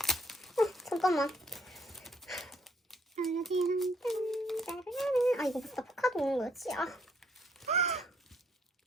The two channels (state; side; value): normal; both; correlation 0.69